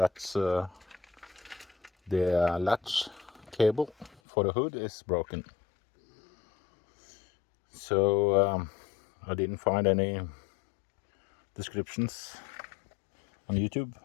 the latch cable for the hood is broken. So I didn't find any descriptions on YouTube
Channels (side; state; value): right; drops out; at 4.2 s